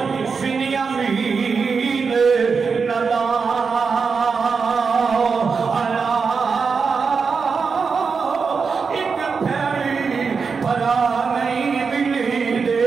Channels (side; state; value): left; quieter; 5.3 dB